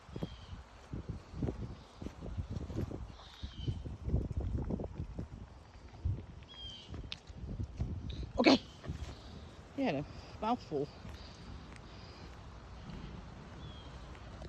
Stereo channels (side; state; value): both; identical; correlation 1.00